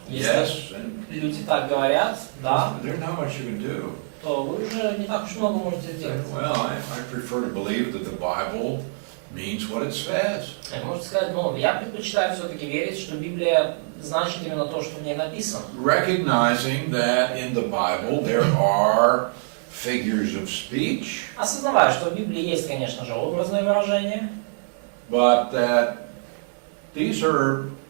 Если yes, and люди так говорят, да, there's not much you can do. то вы уже не так уж много можете сделать. Well, I prefer to believe that the Bible means what it says. Можете сказать, ну, я предпочитаю все-таки верить, что Библия значит именно то, что в ней написано. Recognizing that in the Bible there are figures of speech, Осознавая, что в Библии есть, конечно же, образные выражения, but that these are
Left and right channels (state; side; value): silent; left; digital silence